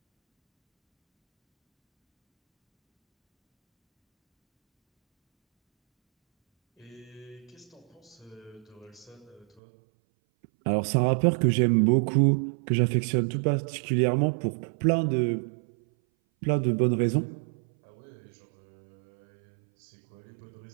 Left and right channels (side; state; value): left; drops out; at 9.5 s